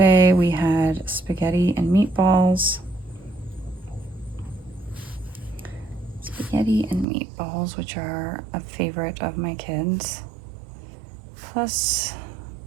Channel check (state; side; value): drops out; left; at 7.1 s